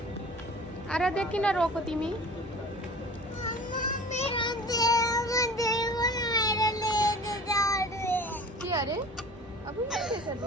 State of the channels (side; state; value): both; normal; correlation 0.41